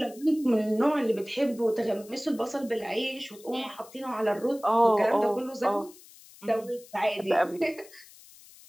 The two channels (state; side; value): noise; left; hiss, 22 dB below the sound